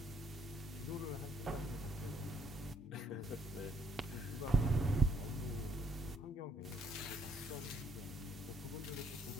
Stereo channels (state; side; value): normal; both; correlation 0.68